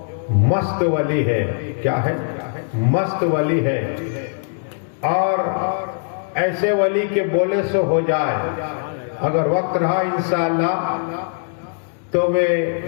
مست ولی ہے، کیا ہے؟ مست ولی ہے، اور ایسے ولی کے بولے سے ہو جائے، اگر وقت رہا انشاءاللہ تو میں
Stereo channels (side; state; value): right; silent; 65 dB below the other